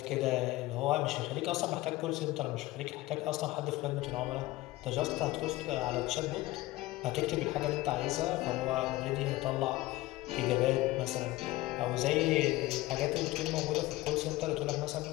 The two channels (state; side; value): quieter; right; 18.4 dB